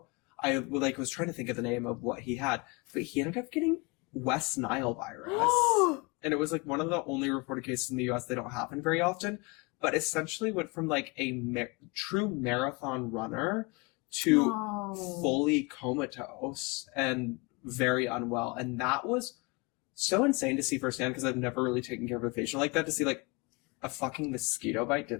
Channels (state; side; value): quieter; right; 27.7 dB